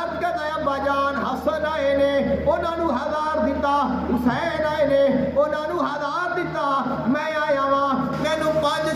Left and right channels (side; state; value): both; identical; correlation 1.00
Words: عرض کرتا ہے ابا جان حسن آئے نے انہاں نو 1000 دیتا, حسین آئے نے انہاں نو 1000 دیتا, میں آیا ہاں مینوں